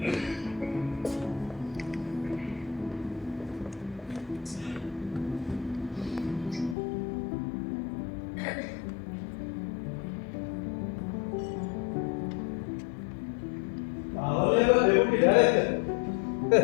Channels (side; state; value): right; drops out; at 6.8 s